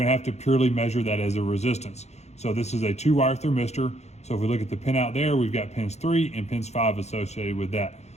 to have to purely measure that as a resistance. So this is a 2-wire thermistor. So if we look at the pin out there, we've got pins 3 and pins 5 associated with that.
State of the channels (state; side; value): late; right; 0.32 ms